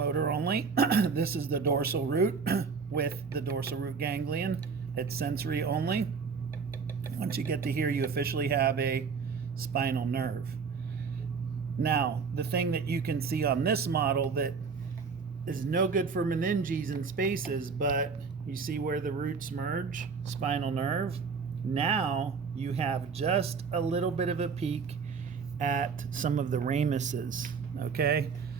only. This is the dorsal root with the dorsal root ganglion. It's sensory only. Once you get to here, you officially have a spinal nerve. Now, the thing that you can see on this model that is no good for meninges and spaces, but you see where the roots merge, spinal nerve. Now you have just a little bit of a peek at some of the ramuses, okay?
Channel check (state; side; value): quieter; left; 5.4 dB